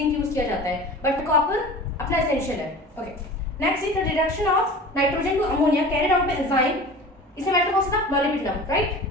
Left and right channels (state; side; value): normal; both; correlation 0.38